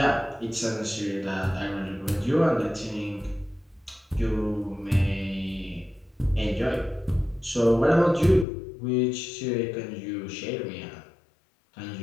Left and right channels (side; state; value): right; drops out; at 8.5 s